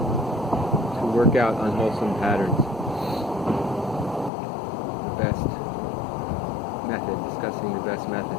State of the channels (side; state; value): right; drops out; at 4.3 s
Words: to work out unwholesome patterns. The best method, discussing the best method.